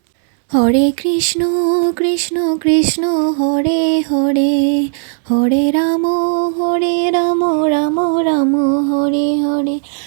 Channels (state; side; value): silent; left; 70 dB below the other